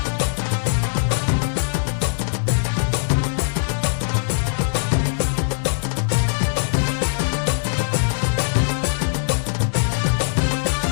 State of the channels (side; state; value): right; silent; 60 dB below the other